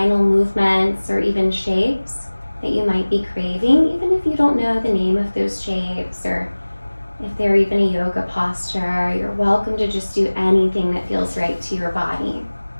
movements or even shapes that you might be craving, even if you don't know the name of those shapes, or if they're even a yoga posture. You're welcome to just do anything that feels right to your body.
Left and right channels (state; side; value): inverted; both; correlation -1.00